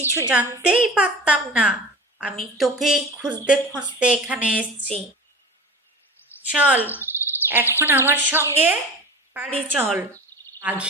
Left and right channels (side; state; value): both; normal; correlation 0.35